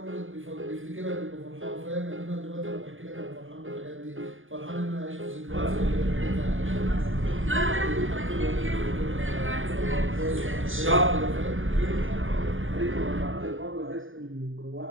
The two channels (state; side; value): late; left; 0.58 ms